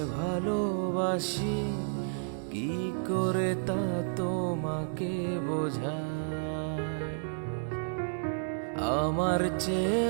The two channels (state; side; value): silent; left; 57 dB below the other